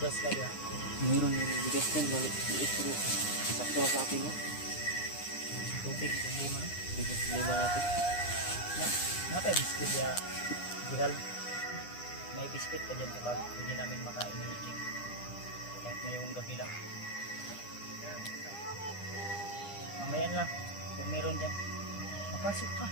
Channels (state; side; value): late; right; 9.9 ms